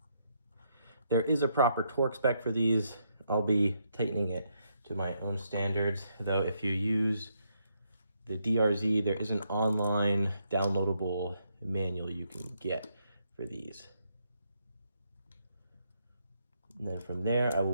There is a proper torque spec for these. I'll be tightening it to my own standards, though if you use the DRZ, there is an online downloadable manual you can get for these. And then from there, I will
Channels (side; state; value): both; inverted; correlation -0.77